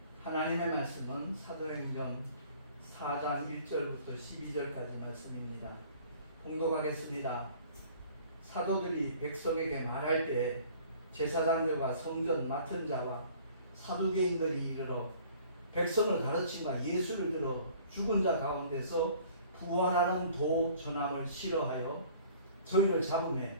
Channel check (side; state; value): both; inverted; correlation -0.51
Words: 하나님의 말씀은 사도행전 4장 1절부터 12절까지 말씀입니다. 봉독하겠습니다. 사도들이 백성에게 말할 때 제사장들과 성전 맡은 자와 사두개인들이 이르러 백성을 가르치마 예수를 들어 죽은 자 가운데서 부활하는 도 전함을 싫어하여 저희를